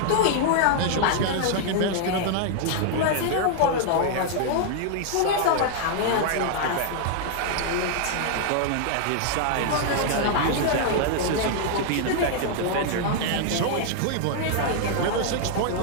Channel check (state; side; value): different; both; correlation 0.00